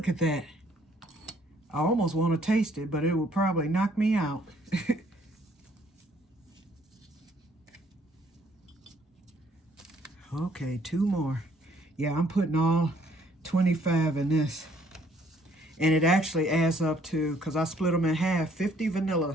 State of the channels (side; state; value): both; normal; correlation 0.64